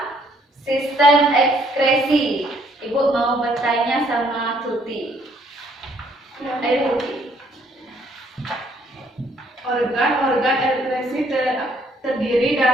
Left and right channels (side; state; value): both; normal; correlation 0.66